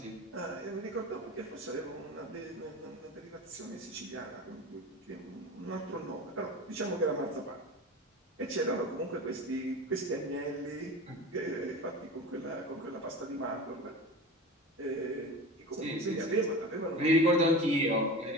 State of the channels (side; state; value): both; normal; correlation 0.31